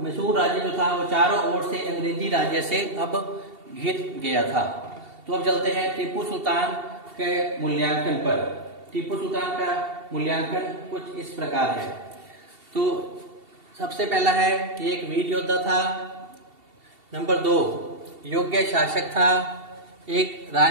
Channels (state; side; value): late; left; 2.7 ms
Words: मैसूर राज्य जो था वो चारों ओर से अंग्रेजी राज्य से अब घिर गया था। तो अब चलते हैं टीपू सुल्तान के मूल्यांकन पर। टीपू सुल्तान का मूल्यांकन कुछ इस प्रकार है। तो सबसे पहला है कि एक वीर योद्धा था। नंबर 2, योग्य शासक था। एक